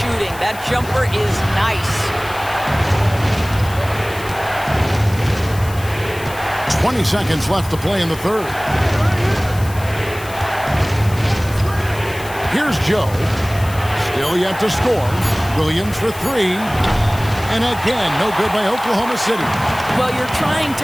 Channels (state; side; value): noise; left; hiss, 16 dB below the sound